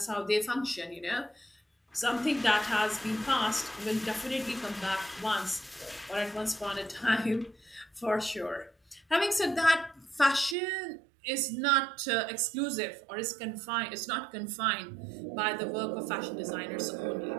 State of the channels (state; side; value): drops out; left; at 10.6 s